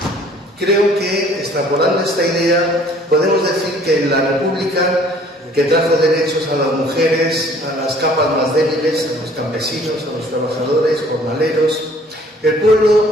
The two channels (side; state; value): both; normal; correlation 0.55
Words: Creo que, extrapolando esta idea, podemos decir que en la República, que trajo derechos a las mujeres, a las capas más débiles, a los campesinos, a los trabajadores, jornaleros, el